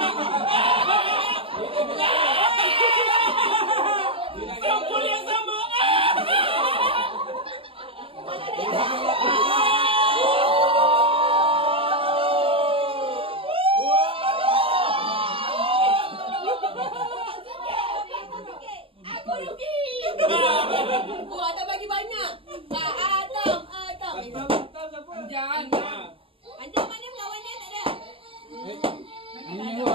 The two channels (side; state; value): left; late; 0.26 ms